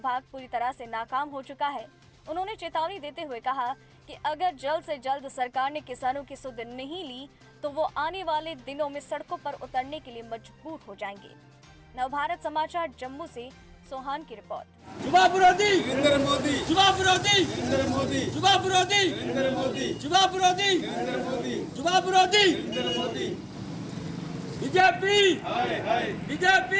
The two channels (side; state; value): both; identical; correlation 1.00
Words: पूरी तरह से नाकाम हो चुका है। उन्होंने चेतावनी देते हुए कहा कि अगर जल्द से जल्द सरकार ने किसानों की सुध नहीं ली तो वो आने वाले दिनों में सड़कों पर उतरने के लिए मजबूर हो जाएंगे। नवभारत समाचार जम्मू से सोहान की रिपोर्ट। युवा विरोधी नरेंद्र मोदी, युवा विरोधी नरेंद्र मोदी, युवा विरोधी नरेंद्र मोदी, युवा विरोधी नरेंद्र मोदी, युवा विरोधी नरेंद्र मोदी। बीजेपी हाय हाय